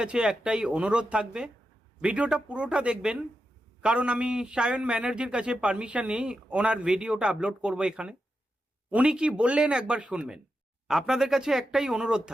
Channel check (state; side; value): normal; both; correlation 0.88